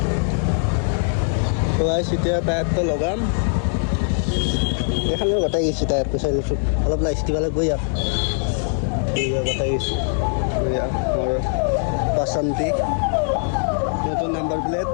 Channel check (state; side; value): silent; right; 65 dB below the other